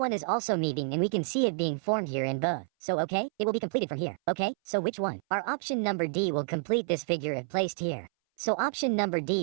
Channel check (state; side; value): silent; left; 58 dB below the other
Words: is also meeting and we can see it being formed here in both. So okay, it will be completed from here. Okay, so which one? Our option number D will complete this figure if placed here. So option number